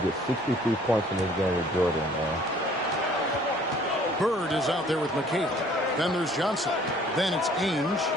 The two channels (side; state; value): both; normal; correlation 0.56